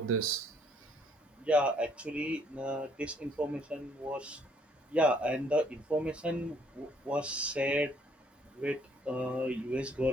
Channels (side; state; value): both; normal; correlation 0.65